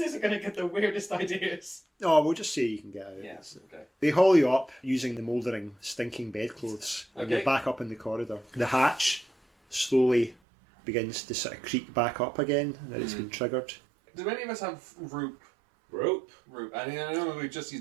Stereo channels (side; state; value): left; drops out; at 10.4 s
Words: are going to get the weirdest ideas. Oh, we'll just say you can get out. Yes. Okay. They haul you up using the mouldering, stinking bedclothes, and Okay. you're back up in the corridor. The hatch slowly begins to sort of creak back up again, and it's been triggered. Do any of us have rope? Rope. I mean, I know we just